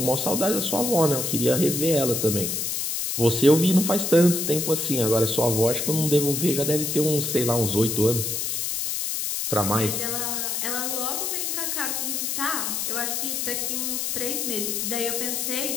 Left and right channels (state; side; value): noise; left; hiss, 1 dB below the sound